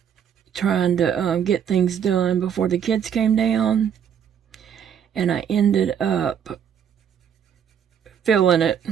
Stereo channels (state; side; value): quieter; left; 8.4 dB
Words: trying to get things done before the kids came down, and I ended up feeling it.